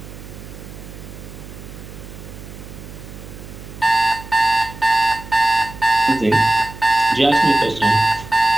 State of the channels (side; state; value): right; noise; hum, 14 dB below the sound